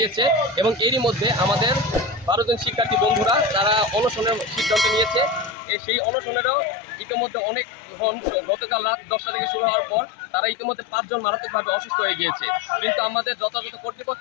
এবং এরই মধ্যে আমাদের 12 জন শিক্ষার্থী বন্ধুরা তারা অনশনের সিদ্ধান্ত নিয়েছে। সেই অনশনেরও ইতিমধ্যে অনেক গতকাল রাত 10টা থেকে শুরু হওয়ার পর তারা ইতিমধ্যে 5 জন মারাত্মকভাবে অসুস্থ হয়ে গিয়েছে। কিন্তু আমাদের যথাযথ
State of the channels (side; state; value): right; drops out; at 5.6 s